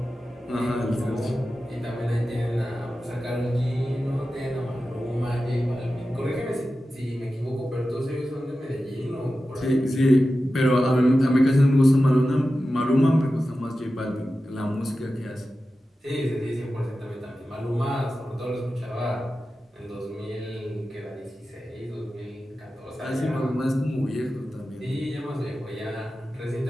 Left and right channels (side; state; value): both; normal; correlation 0.93